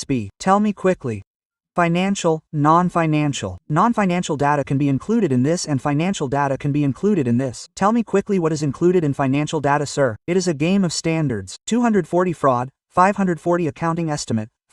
be? Tell me quickly. Financial, non-financial. Non-financial data can be included in this and financial data can be included in this. Tell me quickly what is included in financial data, sir. It is a game of standards. 240 fraud, 540 accounting estimate,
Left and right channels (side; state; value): both; identical; correlation 1.00